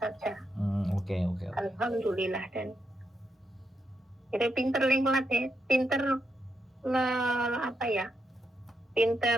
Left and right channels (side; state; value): both; normal; correlation 0.81